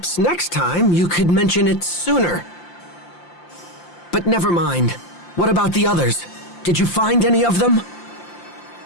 next time you could mention it sooner. But never mind. What about the others? Did you find any of them?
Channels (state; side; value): late; right; 5.8 ms